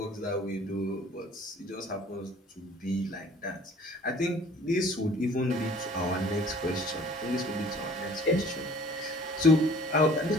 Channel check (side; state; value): both; normal; correlation 0.51